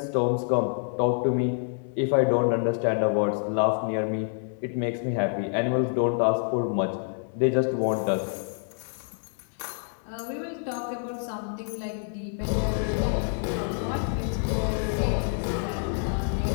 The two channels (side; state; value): right; silent; 60 dB below the other